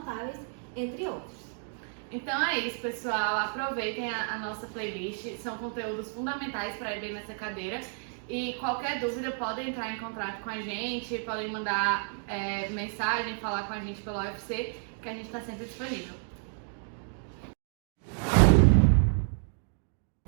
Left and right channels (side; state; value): left; silent; 57 dB below the other